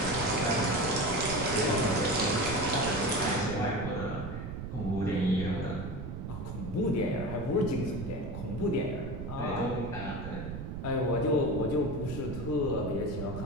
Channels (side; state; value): right; noise; rumble, 7 dB below the sound